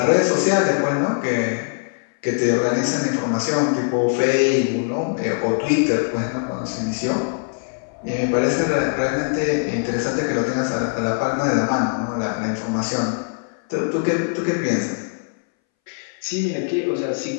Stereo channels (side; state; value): right; silent; 63 dB below the other